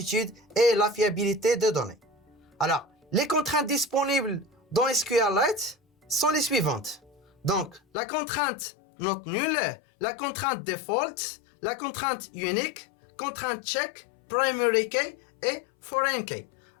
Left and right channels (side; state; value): right; drops out; at 7.8 s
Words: et la fiabilité des données. Alors, les contraintes disponibles dans SQLite sont les suivantes. Donc, la contrainte not null, la contrainte default, la contrainte unique, contrainte check, primary key et foreign key.